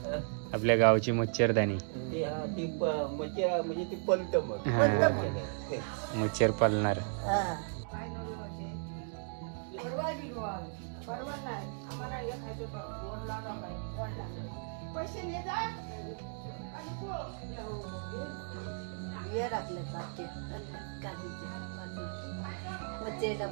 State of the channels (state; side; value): silent; left; 54 dB below the other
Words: आपल्या गावची मच्छरदाणी. मच्छर पालणार.